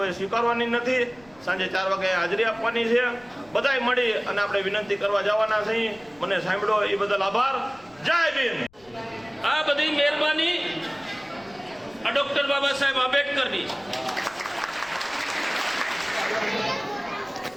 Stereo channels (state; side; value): noise; left; rumble, 28 dB below the sound